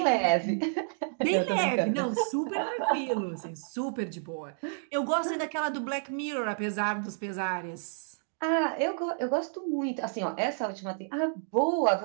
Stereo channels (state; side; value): silent; left; digital silence